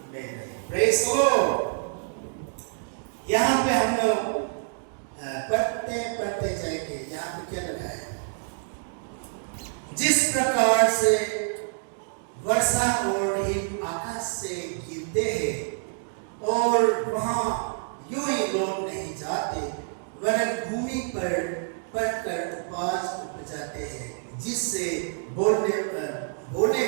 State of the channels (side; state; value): left; silent; digital silence